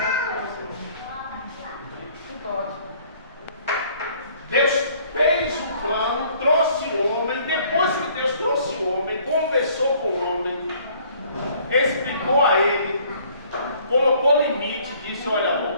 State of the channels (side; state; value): both; inverted; correlation -0.58